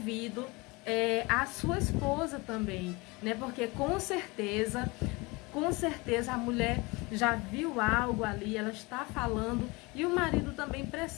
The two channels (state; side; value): quieter; right; 25.2 dB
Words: à sua esposa também, né? Porque com certeza a mulher já viu algo ali, ela está falando, e o marido também